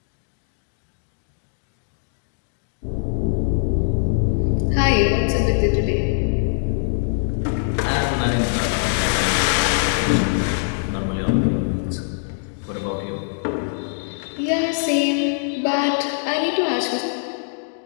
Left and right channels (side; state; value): right; silent; digital silence